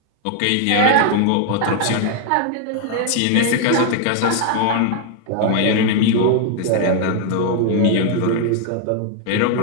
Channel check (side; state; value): both; different; correlation 0.00